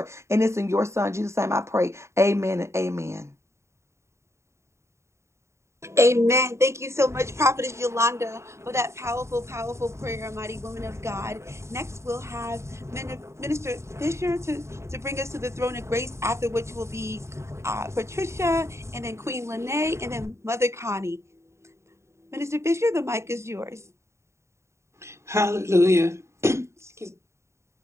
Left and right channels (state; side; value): late; left; 0.14 ms